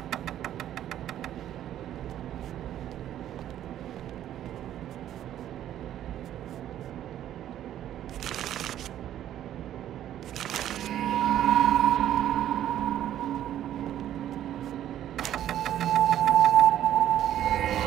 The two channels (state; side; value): quieter; left; 11.6 dB